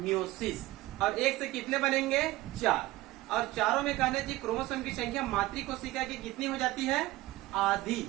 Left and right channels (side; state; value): left; quieter; 18.0 dB